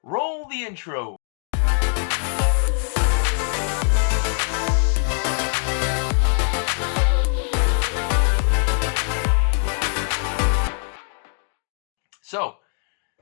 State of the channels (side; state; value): right; silent; 60 dB below the other